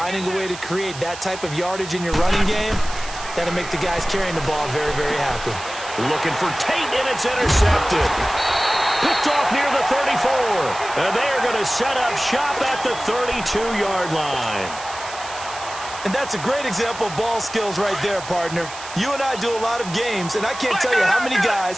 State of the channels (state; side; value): noise; right; hiss, 13 dB below the sound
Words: a way to create that type of yardage in your running game, that'll make the guys carrying the ball very, very happy. Looking for Tate, and it's intercepted. Picked off near the 34. And they're going to set up shop at the 32-yard line. And that's a great example of ball skills right there, partner. You and I do a lot of games, and I can't tell you how many